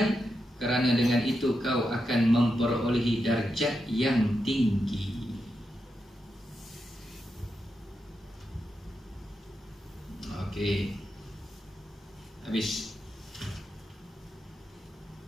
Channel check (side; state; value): both; normal; correlation 0.86